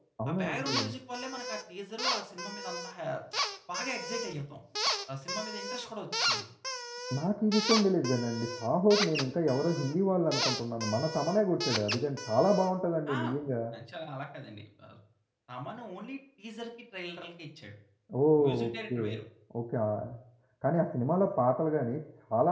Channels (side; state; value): both; identical; correlation 1.00